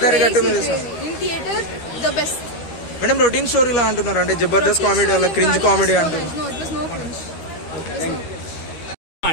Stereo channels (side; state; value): right; late; 13 ms